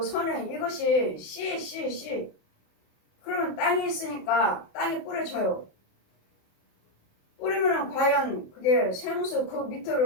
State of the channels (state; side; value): late; right; 27 ms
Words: 선행 이것이 씨. 그러면 땅이 있으니까 땅이 뿌려져요. 뿌리면은 과연 그게 생수 그